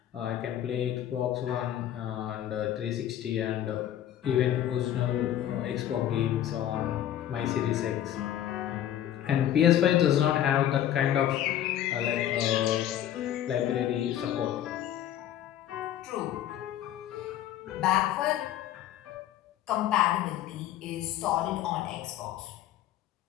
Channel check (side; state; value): right; quieter; 11.4 dB